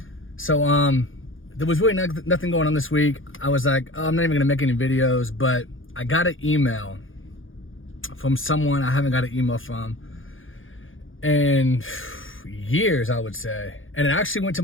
So there was really nothing going on this week. I was like, oh, I'm not even gonna make any videos, but I got an email from someone I haven't got an email from in years, I would say. And it actually went to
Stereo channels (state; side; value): late; right; 0.58 ms